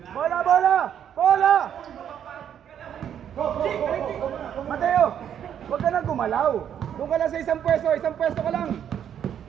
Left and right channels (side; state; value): left; quieter; 9.3 dB